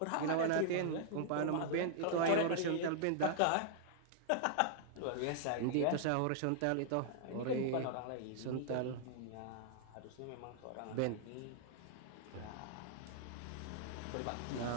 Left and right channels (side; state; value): both; different; correlation -0.01